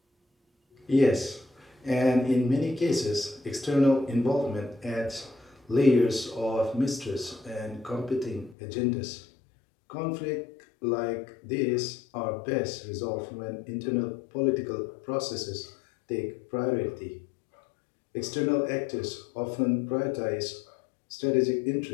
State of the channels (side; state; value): right; drops out; at 8.6 s